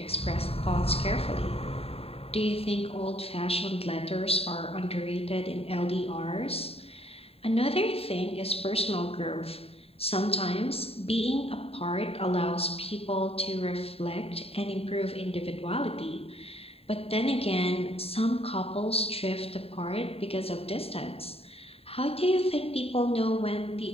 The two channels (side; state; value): right; late; 0.28 ms